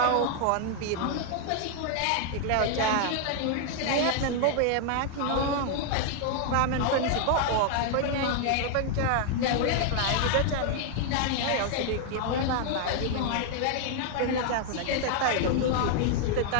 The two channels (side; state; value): both; different; correlation 0.00